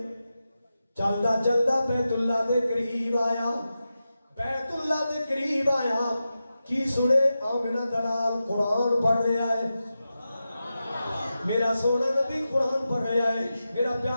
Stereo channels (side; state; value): both; inverted; correlation -0.92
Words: چلدا چلدا بیت اللہ دے قریب آیا, بیت اللہ دے قریب آیا. کی سنے آمنہ دلال قرآن پڑھ رہا ہے. میرا سونا نبی قرآن پڑھ رہا ہے, میرا